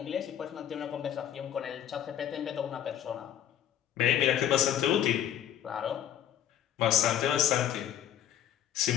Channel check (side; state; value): right; quieter; 10.4 dB